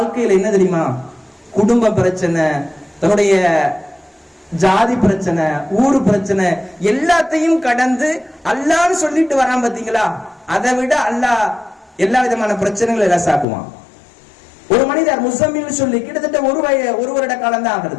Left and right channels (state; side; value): drops out; right; at 13.5 s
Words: என்ன தெரியுமா? குடும்ப பிரச்சனை, தன்னுடைய ஜாதி பிரச்சனை, ஊரு பிரச்சனை, எல்லாத்தையும் கடந்து அல்லாஹ்னு சொல்லிட்டு வரான் பாத்தீங்களா? அதை விட அல்லாஹ் எல்லா விதமான பிரச்சனைகளை லேசாக்குவான். ஒரு மனிதர் முஸம்மில் சொல்லி கிட்டத்தட்ட ஒரு வருட காலம் தான்